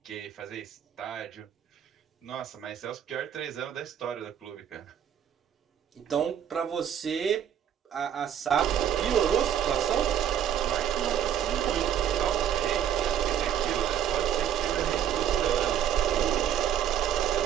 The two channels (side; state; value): left; quieter; 9.6 dB